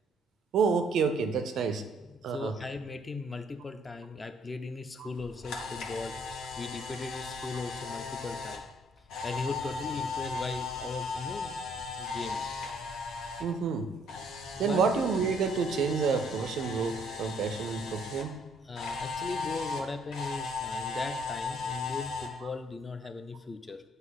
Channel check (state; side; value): normal; both; correlation 0.65